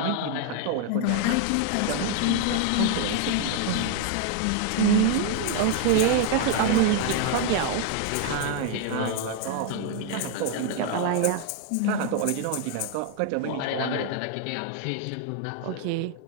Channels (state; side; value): different; both; correlation 0.00